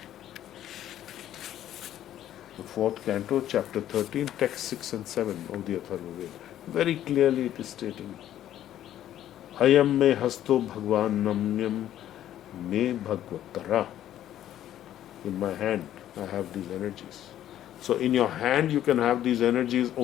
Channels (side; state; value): right; quieter; 11.9 dB